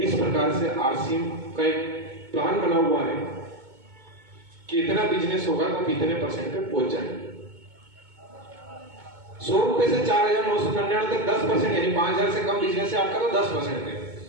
प्रकार से आरसीएम का एक प्लान बना हुआ है कि इतना बिजनेस होगा तो कितने परसेंट पे पहुंच जाएंगे। 100 रुपए से 4,999 तक 10%, यानी 5,000 से कम बिजनेस है आपका तो 10% है।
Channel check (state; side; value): late; left; 2.2 ms